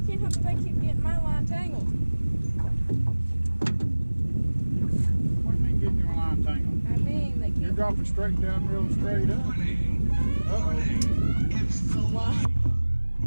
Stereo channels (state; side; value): inverted; both; correlation -1.00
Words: help that they keep getting my line tangled. What do you mean getting your line tangled? I mean, they You're keep dropping straight down, real straight up. Uh-oh. why? I